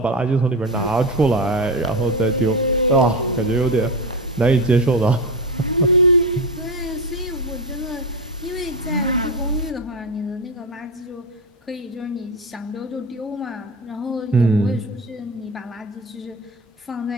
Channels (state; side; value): normal; both; correlation 0.18